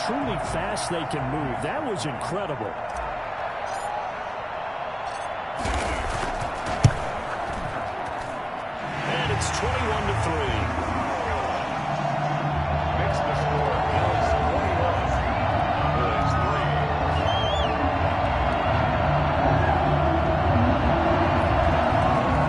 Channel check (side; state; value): both; identical; correlation 1.00